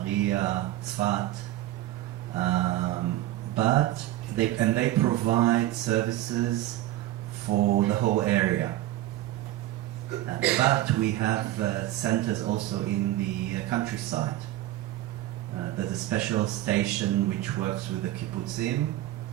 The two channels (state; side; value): quieter; left; 14.8 dB